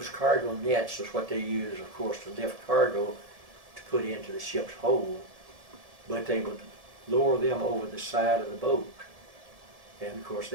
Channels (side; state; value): left; late; 1.7 ms